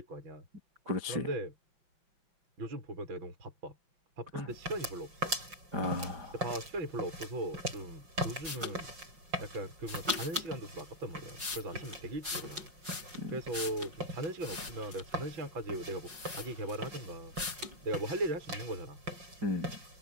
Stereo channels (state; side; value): late; left; 5.5 ms